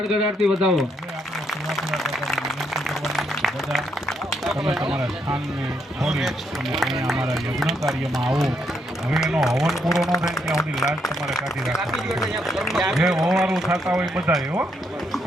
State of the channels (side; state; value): both; normal; correlation 0.76